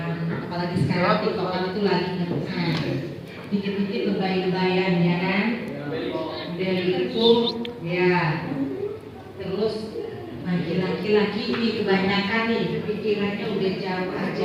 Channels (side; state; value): both; identical; correlation 1.00